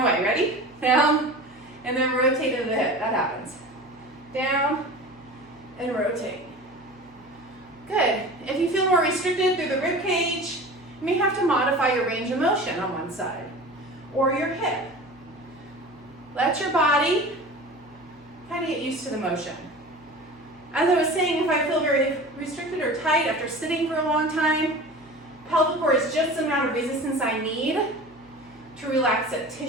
way. Ready? Down, and then rotate into the hip. That happens. Down, and rotate. Good. If you feel more restricted through the rib cage, you may have to modify your range of motion on one side, or your hip. Let your body kind of get used to the motion. As I was saying, if I feel very restricted or tight after sitting for a long time, pelvic core is just the amount of resistance I need to relax that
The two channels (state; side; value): noise; left; hum, 27 dB below the sound